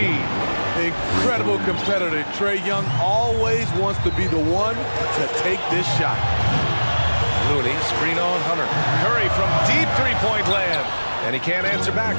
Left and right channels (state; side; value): inverted; both; correlation -1.00